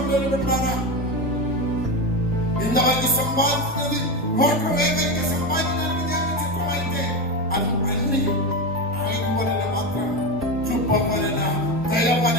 పెట్టారా. ఇంతవరకు సంపాదించినది కోట్ల వేగంగా సంపాదించడానికి దేవుని చిత్తమైతే అది అన్ని ఆయన వలన మాత్రం, కృప వలన, దయ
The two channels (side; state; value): both; normal; correlation 0.17